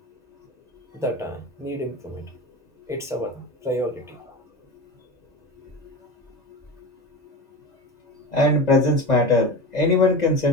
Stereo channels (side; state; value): both; normal; correlation 0.27